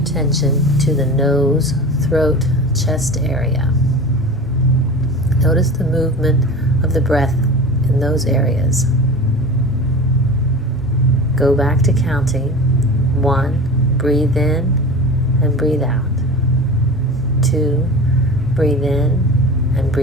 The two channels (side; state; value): both; normal; correlation 0.34